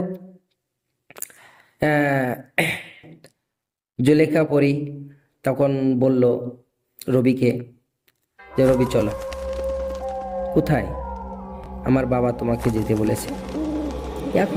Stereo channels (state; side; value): identical; both; correlation 1.00